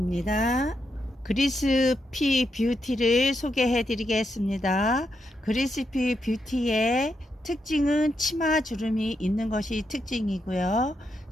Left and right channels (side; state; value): both; normal; correlation 0.82